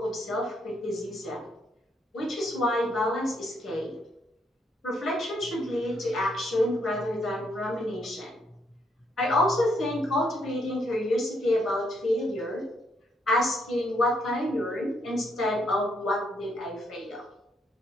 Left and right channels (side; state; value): both; normal; correlation 0.74